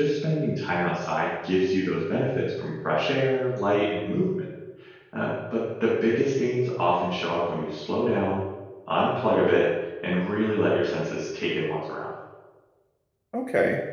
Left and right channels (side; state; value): both; identical; correlation 1.00